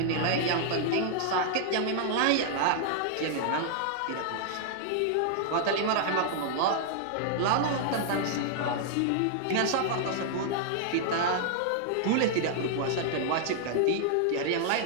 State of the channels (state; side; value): different; both; correlation -0.01